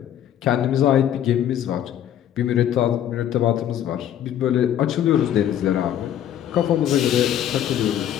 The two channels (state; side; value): quieter; right; 10.6 dB